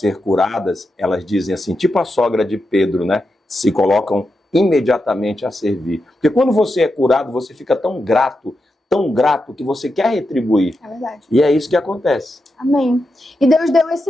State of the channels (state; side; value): normal; both; correlation 0.87